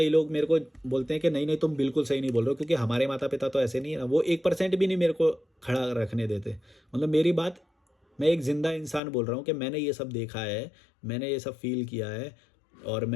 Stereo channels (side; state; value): right; drops out; at 9.0 s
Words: लोग मेरे को बोलते हैं कि नहीं नहीं तुम बिल्कुल सही नहीं बोल रहे हो, क्योंकि हमारे माता पिता तो ऐसे नहीं है ना, वो 1% भी नहीं मेरे को खड़ा रखने देते। मतलब मेरी बात, मैं एक ज़िंदा इंसान बोल रहा हूँ कि मैंने ये सब देखा है, मैंने ये सब फील किया है, और